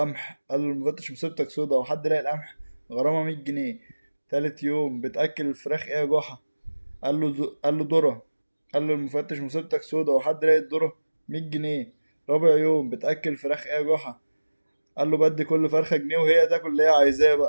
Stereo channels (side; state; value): both; inverted; correlation -1.00